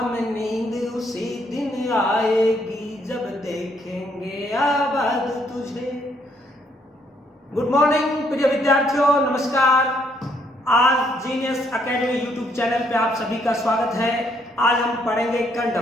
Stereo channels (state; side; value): normal; both; correlation 0.70